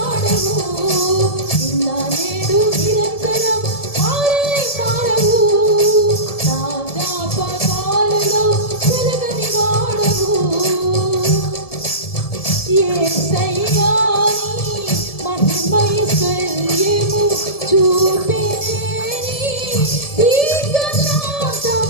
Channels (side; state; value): right; late; 1.7 ms